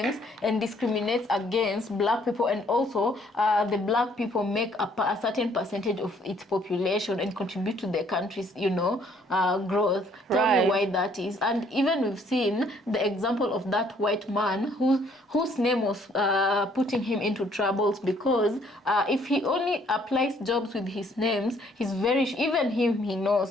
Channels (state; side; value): normal; both; correlation 0.63